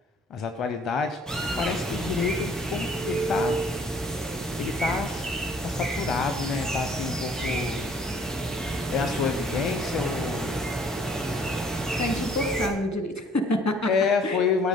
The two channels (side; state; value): both; normal; correlation 0.58